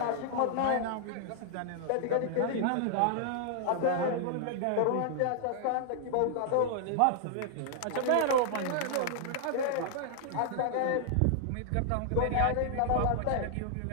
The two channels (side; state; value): both; different; correlation -0.01